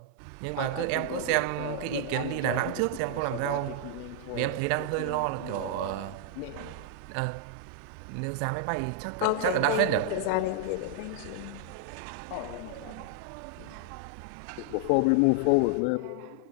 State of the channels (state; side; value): different; both; correlation 0.00